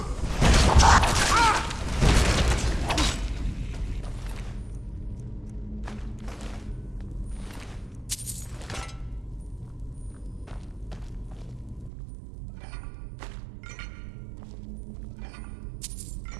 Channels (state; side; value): drops out; left; at 11.9 s